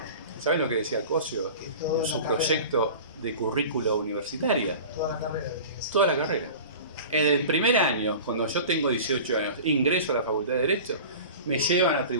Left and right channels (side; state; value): both; inverted; correlation -0.37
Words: ¿Saben lo que decía Cosio en su proyecto de currícula universitaria? Toda la carrera. En el primer año, cuando yo tengo 18 años, ingreso a la Facultad de Derecho, me llevan a